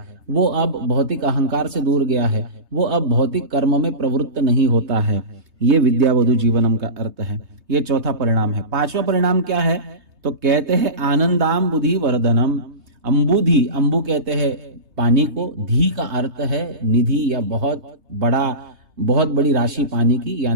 वो अब भौतिक अहंकार से दूर गया है, वो अब भौतिक कर्म में प्रवृत्त नहीं होता है। ये विद्यावधु जीवनम का अर्थ है। ये चौथा परिणाम है। पांचवा परिणाम क्या है? तो कहते हैं आनंदाम बुद्धि वर्धनम। अंबुधि, अंबु कहते हैं पानी को, धी का अर्थ है निधि या बहुत बड़ी राशि पानी की,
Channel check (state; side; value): late; left; 3.3 ms